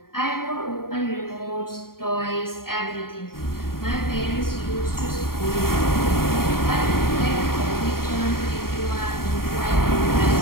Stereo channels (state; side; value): late; right; 0.93 ms